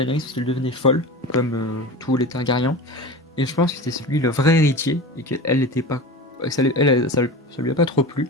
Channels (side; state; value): both; normal; correlation 0.30